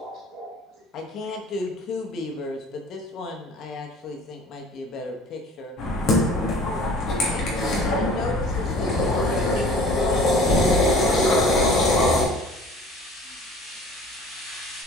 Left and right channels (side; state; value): both; normal; correlation 0.47